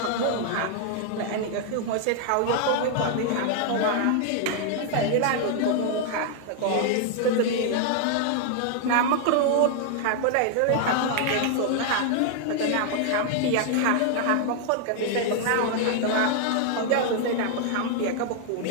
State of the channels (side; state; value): both; different; correlation 0.00